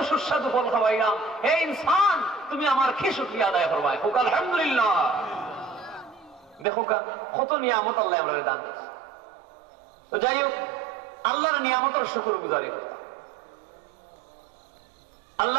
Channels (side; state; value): left; drops out; at 6.7 s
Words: সুস্বাদু ফল খাওয়াইলাম, হে ইনসান তুমি আমার কি শুকরিয়া আদায় করবা, হোক আলহামদুলিল্লাহ। দেখো কত নিয়ামত আল্লাহ আমরা দান দিয়েছে। তো যাই হোক, আল্লাহর নিয়ামতের শুকর গুজারি করতাম।